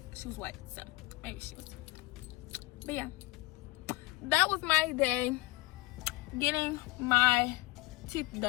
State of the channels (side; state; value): right; quieter; 20.2 dB